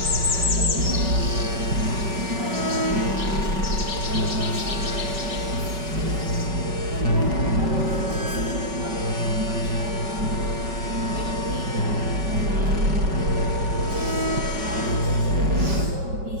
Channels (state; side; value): late; left; 5.2 ms